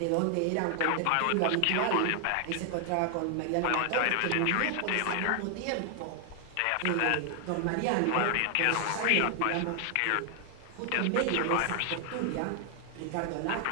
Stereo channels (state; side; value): different; both; correlation 0.00